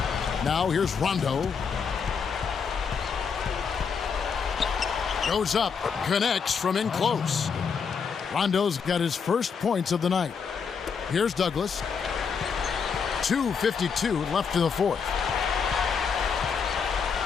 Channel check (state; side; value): quieter; right; 6.1 dB